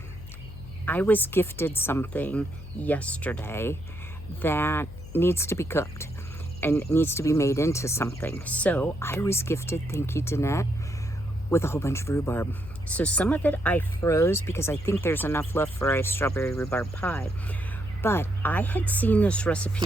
I was gifted something yesterday that needs to be cooked and needs to be made into something. So I was gifted, thank you Danette, with a whole bunch of rhubarb. So some of it I froze because I think there's enough left for a strawberry rhubarb pie. But I had seen this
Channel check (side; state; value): left; noise; hum, 14 dB below the sound